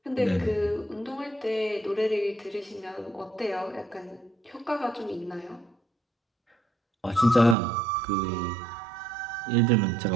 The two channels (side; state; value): left; drops out; at 7.6 s